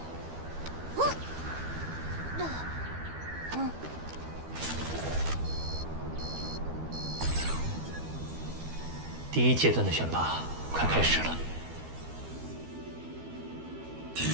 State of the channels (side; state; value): left; late; 12 ms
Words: 第1阶段的选拔快开始了。